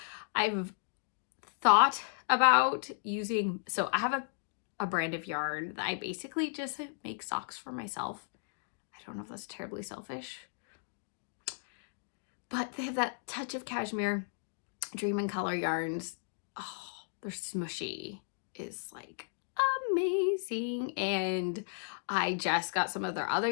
I've thought about using, so I have a brand of yarn that I basically just make socks for myself. I don't know if that's terribly selfish, but they have that touch of cashmere. Dream and Color yarns, oh, they're smushy, is like amazing. And I just got some of their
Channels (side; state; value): right; silent; digital silence